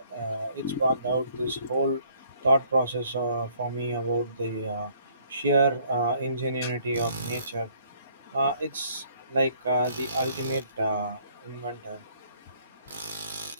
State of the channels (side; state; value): both; inverted; correlation -0.62